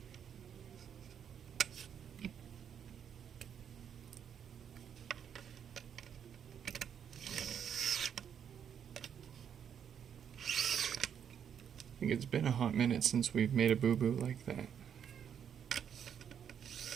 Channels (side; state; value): left; quieter; 8.3 dB